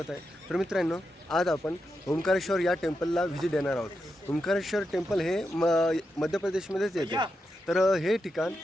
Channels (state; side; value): normal; both; correlation 0.87